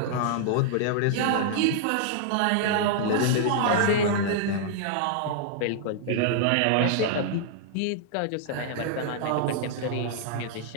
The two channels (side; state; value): both; different; correlation -0.01